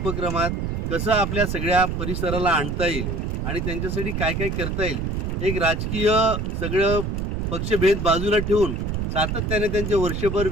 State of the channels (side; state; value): right; noise; rumble, 2 dB below the sound